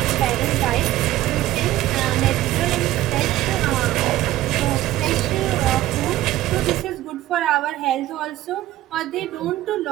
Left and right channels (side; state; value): left; quieter; 15.0 dB